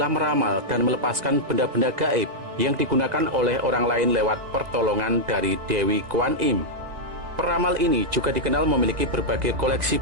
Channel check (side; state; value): left; late; 1.9 ms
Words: meramal dan melepaskan benda-benda gaib yang digunakan oleh orang lain lewat pertolongan dari Dewi Kuan Im. Peramal ini juga dikenal memiliki berbagai koleksi